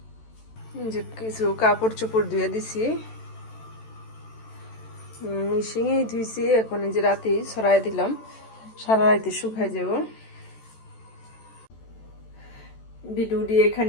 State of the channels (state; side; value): late; right; 14 ms